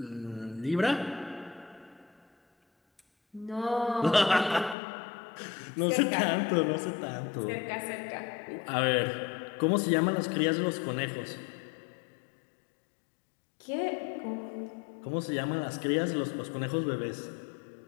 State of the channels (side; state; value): right; drops out; at 4.8 s